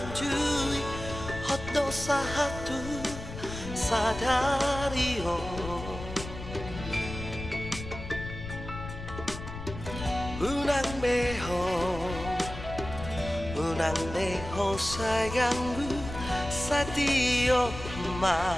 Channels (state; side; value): noise; left; rumble, 10 dB below the sound